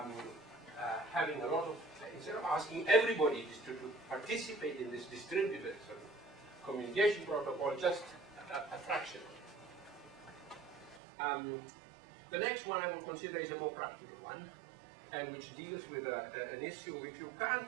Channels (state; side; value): drops out; left; at 11.0 s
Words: having a lot of, instead of asking everybody to participate in this distributed sort of communication protocol, just a fraction. The next one I will consider is a more practical one, and which deals with an issue. If you